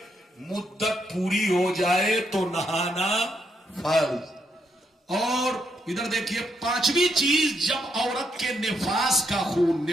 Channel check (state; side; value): normal; both; correlation 0.78